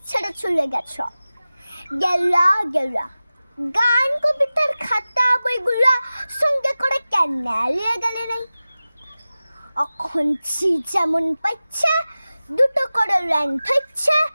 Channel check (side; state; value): both; inverted; correlation -0.96